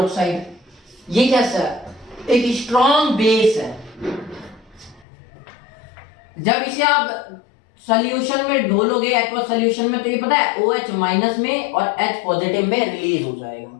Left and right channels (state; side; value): drops out; right; at 5.1 s